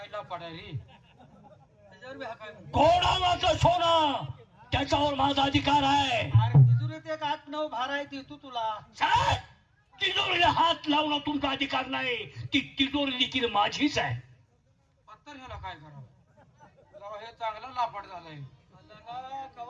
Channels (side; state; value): both; identical; correlation 1.00